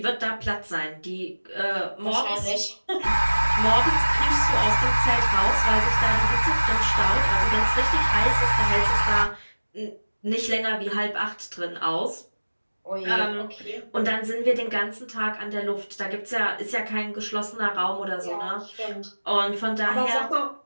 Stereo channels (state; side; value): inverted; both; correlation -1.00